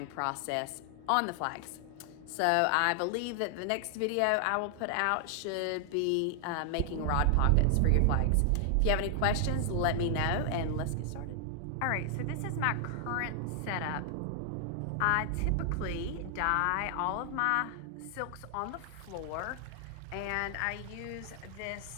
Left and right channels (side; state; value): both; different; correlation 0.00